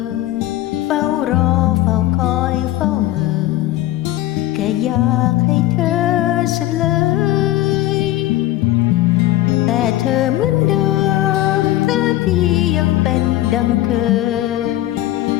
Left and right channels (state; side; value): quieter; right; 15.2 dB